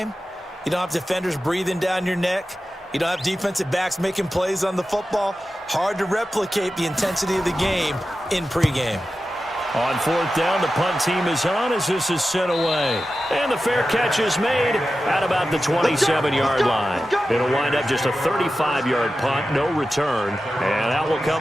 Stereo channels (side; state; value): both; normal; correlation 0.93